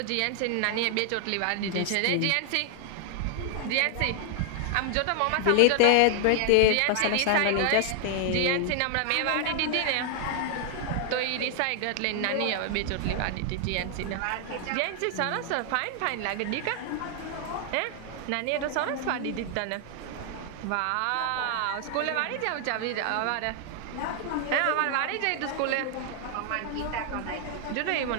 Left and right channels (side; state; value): both; different; correlation 0.00